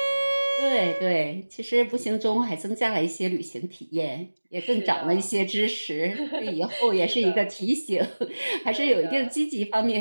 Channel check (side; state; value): both; inverted; correlation -1.00